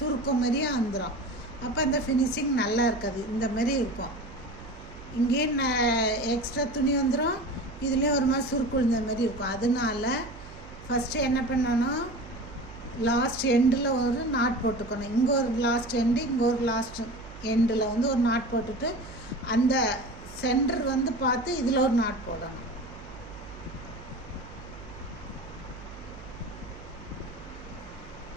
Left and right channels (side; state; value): right; noise; hum, 18 dB below the sound